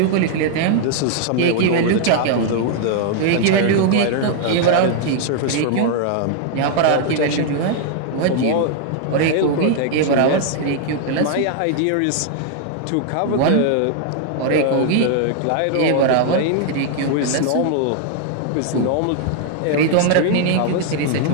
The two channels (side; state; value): both; different; correlation 0.00